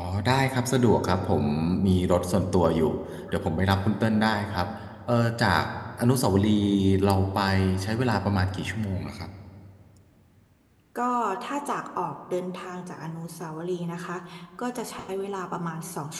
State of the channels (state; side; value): identical; both; correlation 1.00